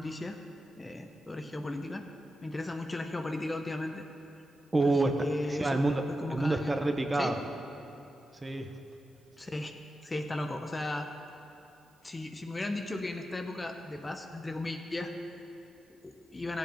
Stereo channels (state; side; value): normal; both; correlation 0.90